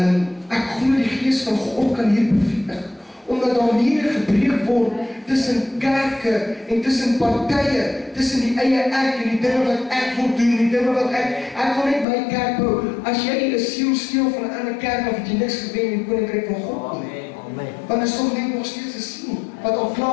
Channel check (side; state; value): right; drops out; at 12.1 s